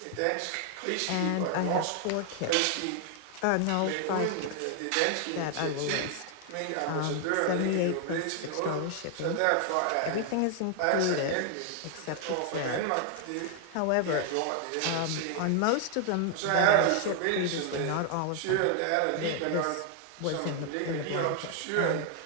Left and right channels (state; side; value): different; both; correlation 0.00